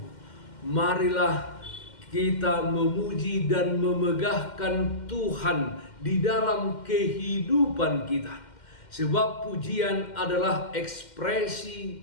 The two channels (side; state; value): right; late; 2.1 ms